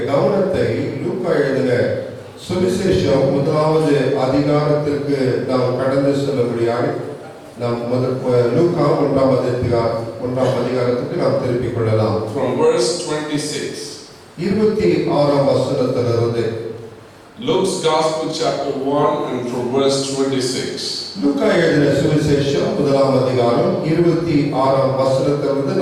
கவனத்தை லூக்கா எழுதின சுவிசேஷம் முதலாவது அதிகாரத்திற்கு நாம் கடந்து செல்லும்படியாக நாம் லூக்கா ஒன்றாம் அதிகாரத்துக்கு நாம் திருப்பிக் கொள்ளலாம். From verse 26. 26ஆம் வசனத்திலிருந்து. Luke's Gospel chapter 1 and from verse 26. லூக்கா எழுதின சுவிசேஷம் முதலாம் அதிகாரம் 26ஆம் வசனத்திலிருந்து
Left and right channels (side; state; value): both; identical; correlation 1.00